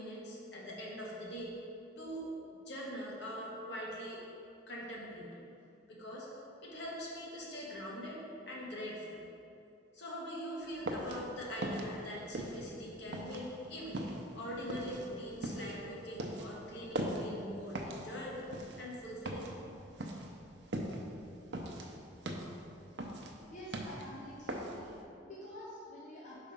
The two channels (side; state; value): both; normal; correlation 0.35